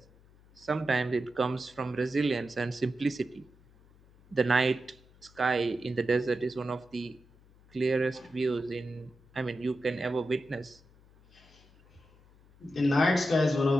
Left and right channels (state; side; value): noise; left; hum, 27 dB below the sound